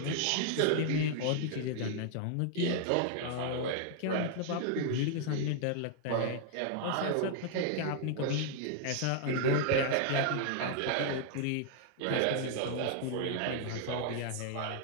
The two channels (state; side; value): different; both; correlation -0.01